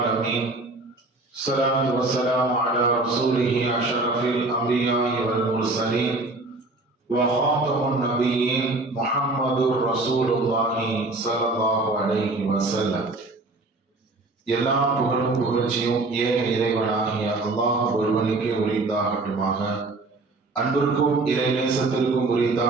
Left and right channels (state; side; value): quieter; left; 3.1 dB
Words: الصلاة والسلام على رسوله أشرف الأنبياء والمرسلين وخاتم النبيين محمد رسول الله صلى الله عليه وسلم. எல்லா புகழும் புகழ்ச்சியும் ஏக இறைவனாகிய அல்லாஹ் ஒருவனுக்கே உரித்தாகட்டுமாக. அன்பிற்கும் இறை நேசத்திற்கும்